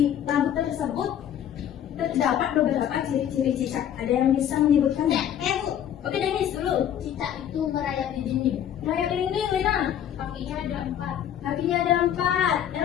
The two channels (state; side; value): quieter; right; 10.0 dB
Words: lagu tersebut terdapat beberapa ciri-ciri cicak. Ada yang bisa menyebutkan? Bu. Oke, Denis dulu. Cicak itu merayap di dinding. Raya dinding, Lina. Kakinya ada 4. Kakinya ada 4.